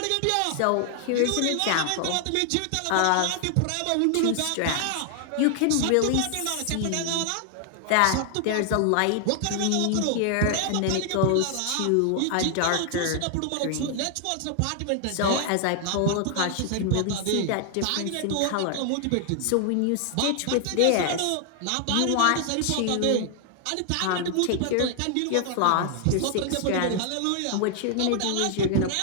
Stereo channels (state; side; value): different; both; correlation 0.00